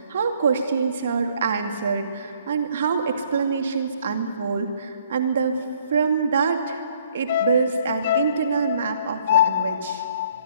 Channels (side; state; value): both; inverted; correlation -0.62